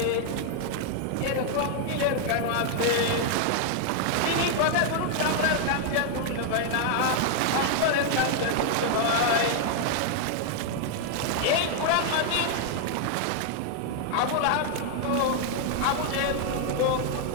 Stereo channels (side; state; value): both; different; correlation 0.00